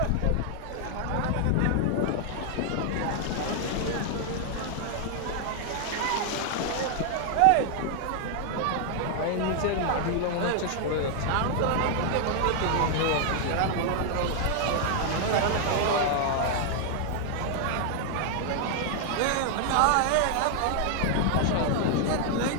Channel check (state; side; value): different; both; correlation 0.00